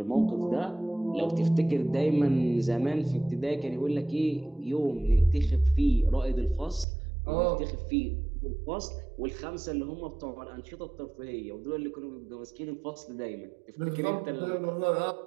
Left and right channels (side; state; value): left; drops out; at 6.9 s